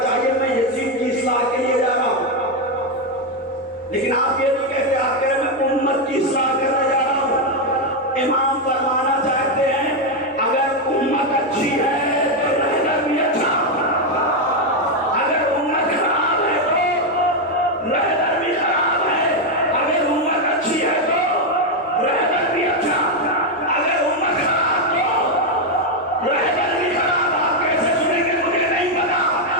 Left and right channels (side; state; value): both; normal; correlation 0.04